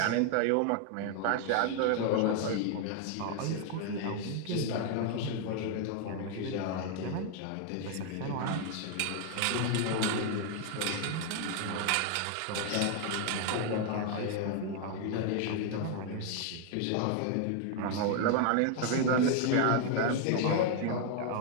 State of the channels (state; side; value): different; both; correlation 0.00